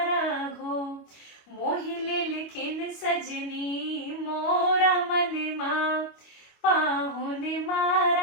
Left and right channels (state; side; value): late; right; 25 ms